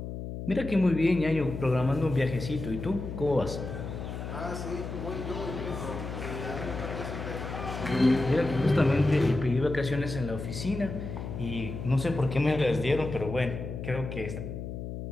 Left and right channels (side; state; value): left; noise; hum, 7 dB below the sound